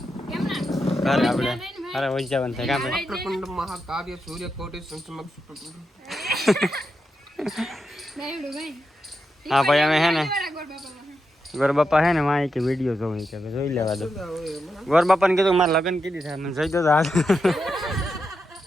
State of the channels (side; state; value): both; normal; correlation 0.86